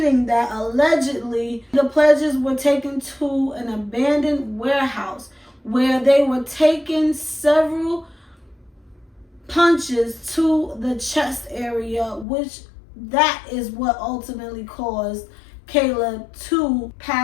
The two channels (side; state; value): right; drops out; at 12.2 s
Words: that allegedly the pledges were taken to an abandoned warehouse where they were taking several punches to the chest area, which that is what ultimately caused Caleb to